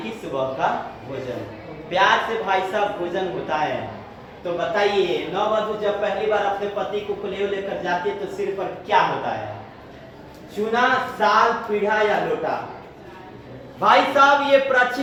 कि सुबह का भोजन। प्यार से भाई साहब भोजन होता है। तो बताइए, नववधु जब पहली बार अपने पति को कलेव लेकर जाती है तो सिर पर क्या होता है? चूना, साल, पीढ़ा या लोटा? भाई साहब ये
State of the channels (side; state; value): both; identical; correlation 1.00